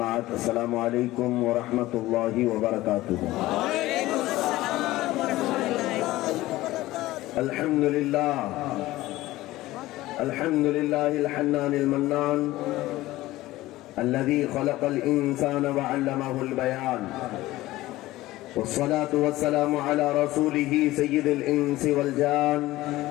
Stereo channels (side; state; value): right; quieter; 17.2 dB